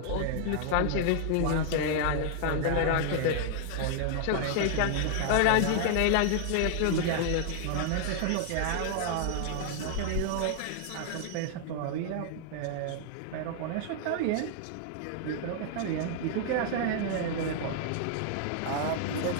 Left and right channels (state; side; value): different; both; correlation -0.01